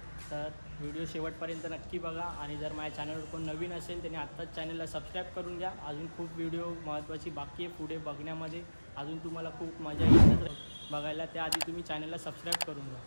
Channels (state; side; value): inverted; both; correlation -1.00